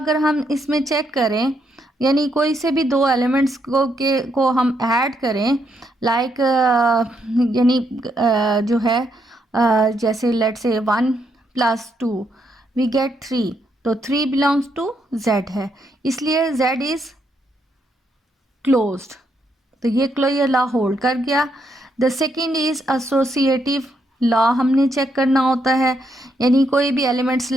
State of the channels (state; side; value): normal; both; correlation 0.77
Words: हम इसमें चेक करें, यानी कोई से भी 2 एलिमेंट्स को हम ऐड करें, लाइक यानी जो है जैसे लेट से 1 + 2 वी गेट 3, तो 3 बिलोंग्स टू Z है, इसलिए Z इज़ क्लोज्ड। तो ये क्लोजर लॉ होल्ड कर गया। The second is associative law हमने चेक करना होता है, यानी कोई भी एलिमेंट्स